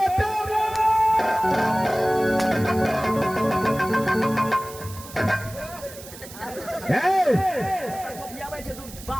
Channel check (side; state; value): right; noise; hiss, 16 dB below the sound